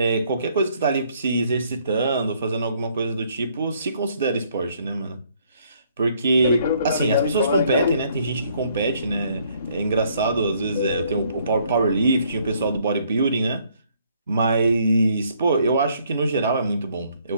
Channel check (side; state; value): both; inverted; correlation -0.66